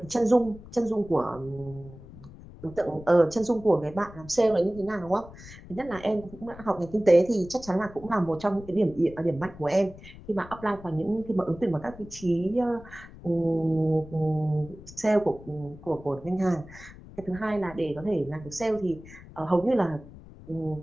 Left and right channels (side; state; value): left; noise; rumble, 17 dB below the sound